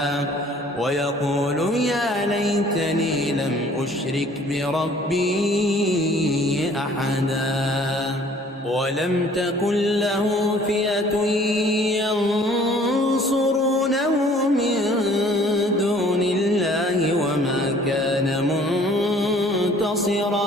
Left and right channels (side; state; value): both; normal; correlation 0.55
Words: ويقول يا ليتني لم أشرك بربي أحدا ولم تكن له فئة ينصرونه من دون الله وما كان